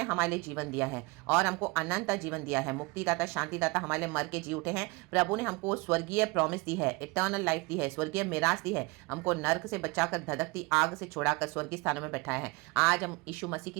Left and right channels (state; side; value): quieter; left; 25.4 dB